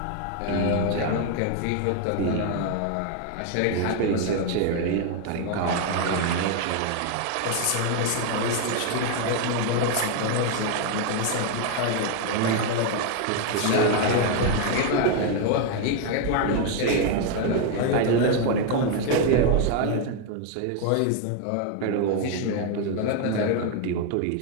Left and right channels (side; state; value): both; different; correlation 0.00